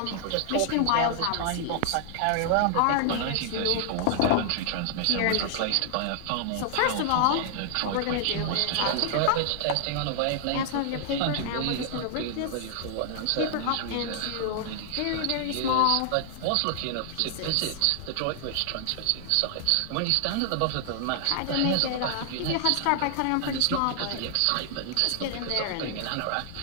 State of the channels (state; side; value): different; both; correlation -0.01